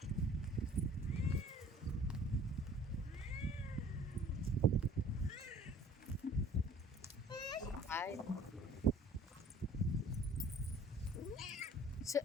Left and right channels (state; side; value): normal; both; correlation 0.51